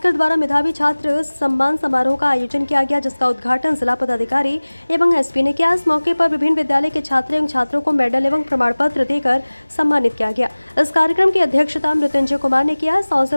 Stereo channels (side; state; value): both; inverted; correlation -1.00